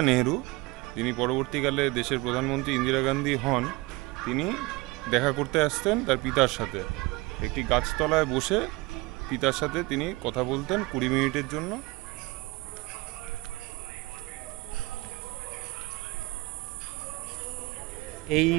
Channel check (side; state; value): left; quieter; 22.6 dB